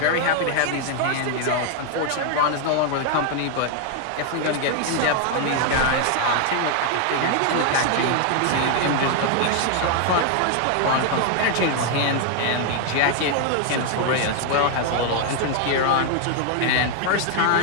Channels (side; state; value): both; different; correlation 0.00